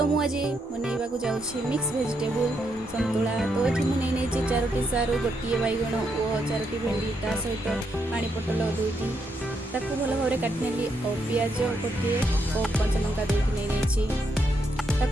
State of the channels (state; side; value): normal; both; correlation 0.78